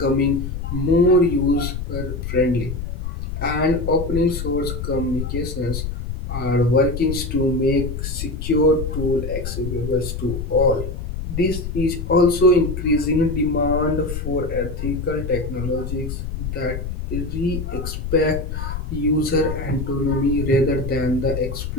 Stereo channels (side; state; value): left; noise; rumble, 5 dB below the sound